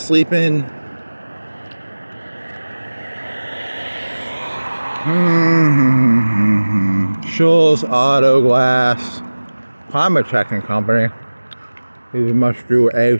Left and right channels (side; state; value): both; inverted; correlation -1.00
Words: sleep in. Schultz Auto Glass, Climate Checking Company. These must do